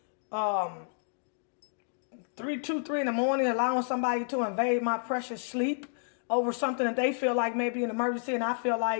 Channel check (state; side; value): silent; right; digital silence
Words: 3 in the morning, allowing somebody to invade my precious sleep over something that they feel like may be an emergency, and I feel